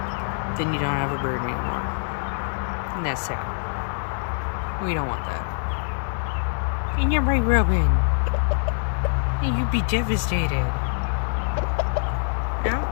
then you don't have a bird anymore. And that's sad. We don't want that. And you're right, Robin. You'd be devastated. No?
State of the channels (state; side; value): silent; right; digital silence